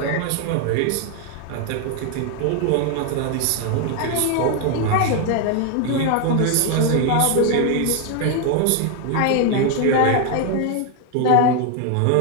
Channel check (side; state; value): both; different; correlation 0.01